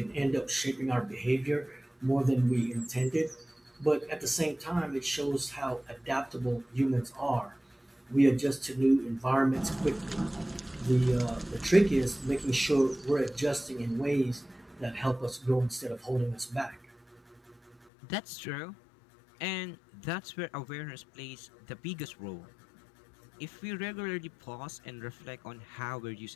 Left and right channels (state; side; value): drops out; right; at 17.8 s